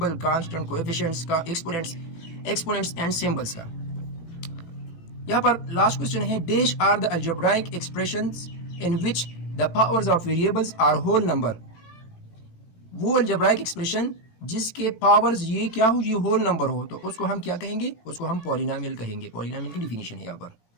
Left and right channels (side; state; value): right; late; 17 ms